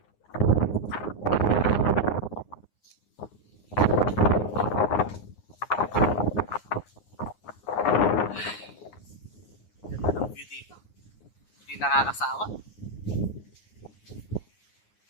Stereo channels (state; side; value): late; right; 9.7 ms